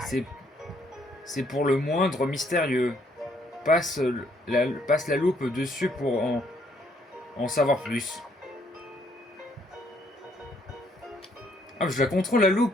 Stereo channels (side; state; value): both; normal; correlation 0.68